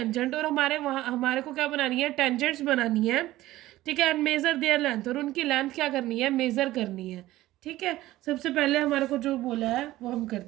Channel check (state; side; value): quieter; left; 16.2 dB